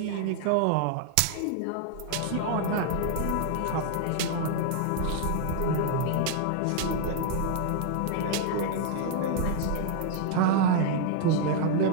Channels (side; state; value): both; different; correlation 0.00